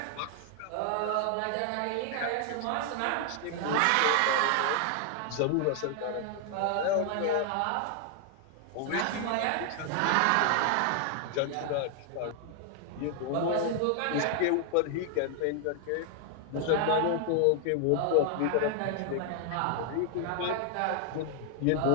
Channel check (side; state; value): both; different; correlation 0.00